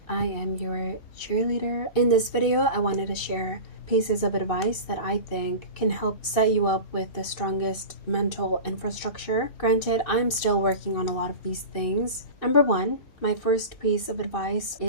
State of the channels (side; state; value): right; late; 2.6 ms